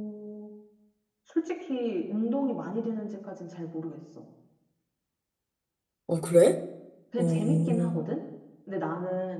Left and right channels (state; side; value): identical; both; correlation 1.00